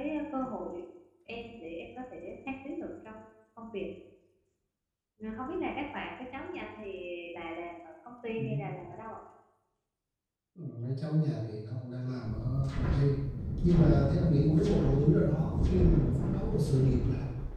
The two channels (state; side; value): identical; both; correlation 1.00